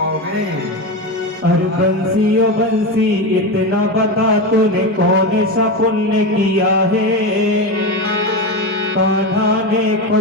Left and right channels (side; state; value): both; normal; correlation 0.18